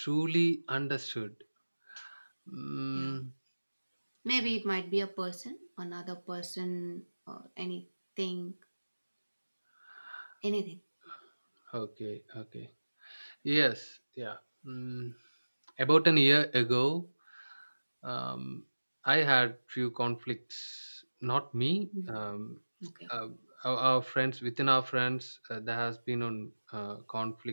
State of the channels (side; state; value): both; inverted; correlation -1.00